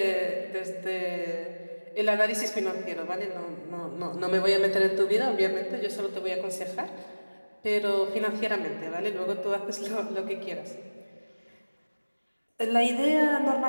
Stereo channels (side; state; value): both; inverted; correlation -1.00